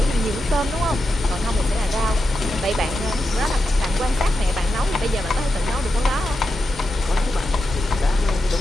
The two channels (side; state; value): both; normal; correlation 0.88